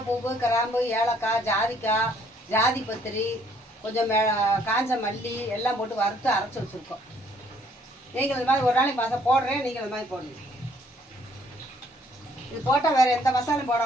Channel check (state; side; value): normal; both; correlation 0.64